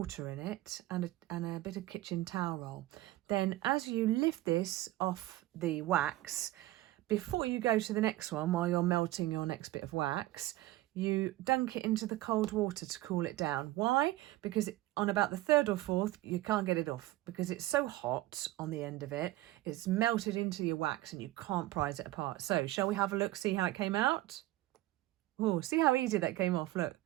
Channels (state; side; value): quieter; left; 16.8 dB